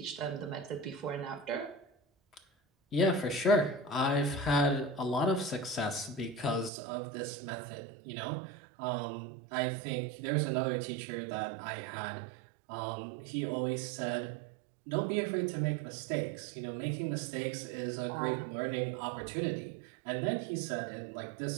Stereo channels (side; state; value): left; drops out; at 6.7 s